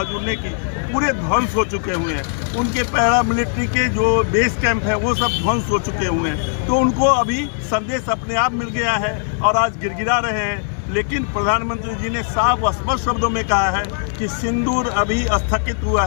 उड़ने की पूरे ध्वंस हो चुके हुए हैं। उनके पैरामिलिट्री के जो बेस कैंप है वो सब ध्वंस हो चुके हुए हैं। तो उनको अभी संदेश अपने आप मिल गया है और आज गिड़गिड़ा रहे हैं। लेकिन प्रधानमंत्री जी ने साफ स्पष्ट शब्दों में कहा है कि सिंदूर अभी स्थगित हुआ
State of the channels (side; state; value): right; silent; digital silence